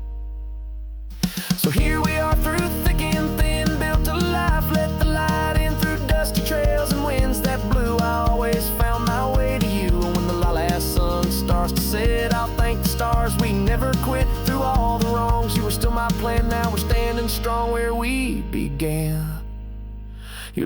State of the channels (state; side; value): identical; both; correlation 1.00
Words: So here we are through thick and thin, built a life, let the light in through dusty trails and winds that blew. I always found my way to you. When the last sun starts to set, I'll thank the stars we never quit. Through all the wrongs, you were still my plan. Now we're standing strong where we began.